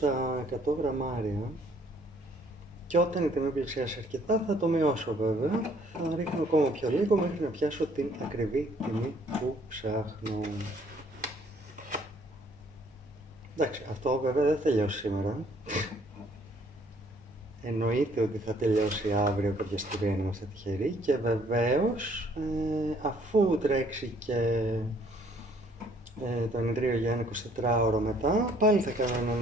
100 γραμμάρια. Και όταν η τιμή πλησιάσει αρκετά θα το μειώσω βέβαια, θα ρίχνω ακόμα πιο λίγο μέχρι να πιάσω την ακριβή τιμή που ψάχνω. Εντάξει, αυτό βέβαια δεν θα τελειώσει σήμερα. Εννοείται ότι θα τελειώσει αύριο κάποια στιγμή αν είμαστε τυχεροί και βεβαίως αφού τρέξει και το ενιδρίο για ένα 24ωρο μετά, πάλι θα κάνω έναν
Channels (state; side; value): normal; both; correlation 0.62